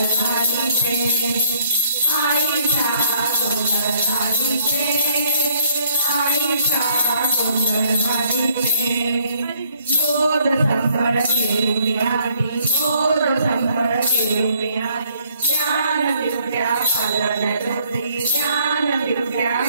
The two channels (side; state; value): both; inverted; correlation -0.64